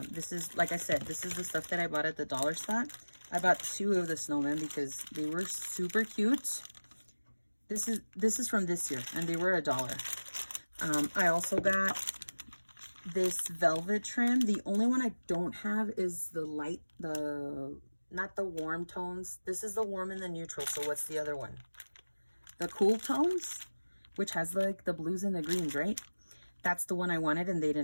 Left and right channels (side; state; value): both; inverted; correlation -1.00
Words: This is, like I said, this is the stuff that I bought at the dollar spot. I bought 2 of the snowmen because they were super cute. This is from this year, and they were $1. I also got this velvet trim. The only one I don't have is the light, not the warm tones. This is the warm and the neutral. So what's the other one? The cool tones, which has like the blues and the greens, right? That's the one I wanted, and they